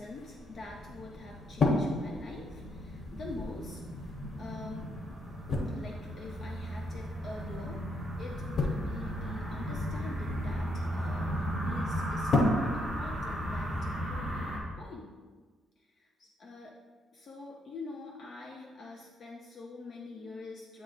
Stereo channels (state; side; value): normal; both; correlation 0.75